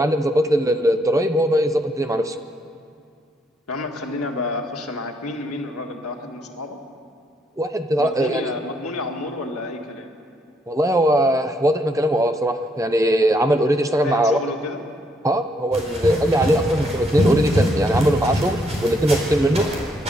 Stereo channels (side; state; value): both; normal; correlation 0.73